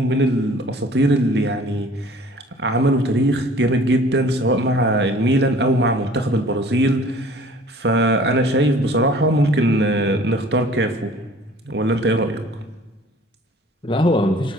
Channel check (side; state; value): both; normal; correlation 0.50